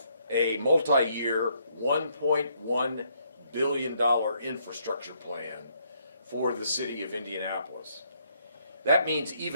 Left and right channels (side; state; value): both; inverted; correlation -0.71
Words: a multi-year $1.1 billion infrastructure plan for the city of Indianapolis. That means